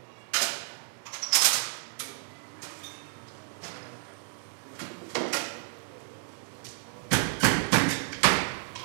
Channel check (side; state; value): left; silent; digital silence